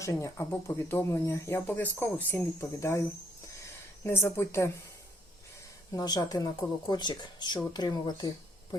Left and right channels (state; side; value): normal; both; correlation 0.69